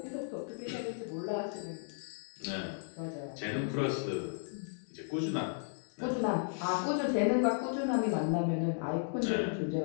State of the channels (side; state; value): right; silent; digital silence